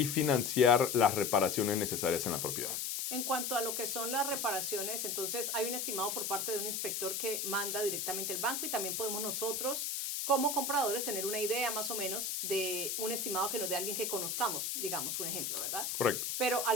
financiar las reparaciones necesarias en la propiedad. En cuanto a lo que son las reparaciones, entonces hay un estimado por parte de un inspector que manda directamente el banco, y también podemos nosotros como compradores tener una idea más o menos de un estimado que nos dé alguien que conozcamos, digamos un ejemplo, ¿verdad? Correcto. Pero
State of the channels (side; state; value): left; noise; hiss, 2 dB below the sound